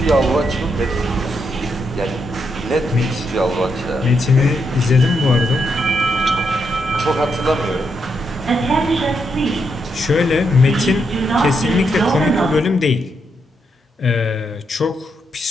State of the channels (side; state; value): both; normal; correlation 0.80